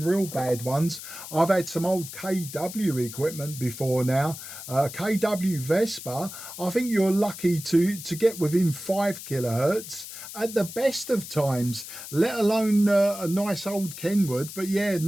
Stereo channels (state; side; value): noise; left; hiss, 11 dB below the sound